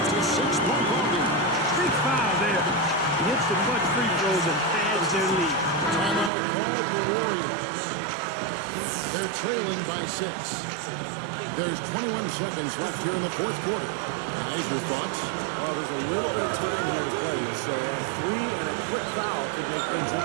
to 6-point ball game. Big foul there. He hits the clutch free throws and adds their lead. Timeout called the Warriors. They're trailing by 6. There's 21 seconds left here in the 4th quarter. Guys, your thoughts? Well, there's a little bit of time here to play with, so a 3 and a quick foul could make things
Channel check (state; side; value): drops out; left; at 6.3 s